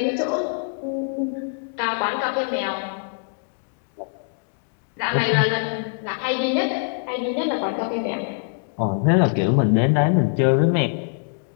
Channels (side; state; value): right; silent; digital silence